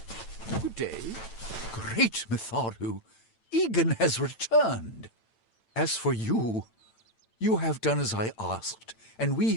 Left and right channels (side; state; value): right; late; 8.9 ms